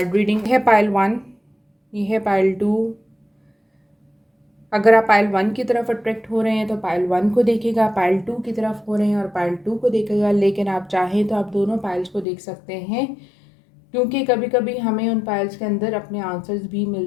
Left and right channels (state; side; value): drops out; right; at 12.2 s